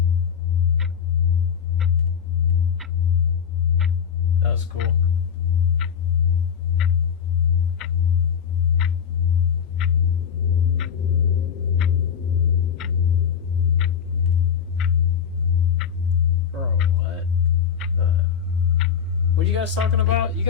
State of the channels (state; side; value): quieter; right; 7.6 dB